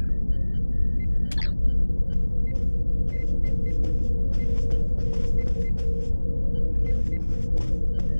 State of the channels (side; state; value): both; inverted; correlation -1.00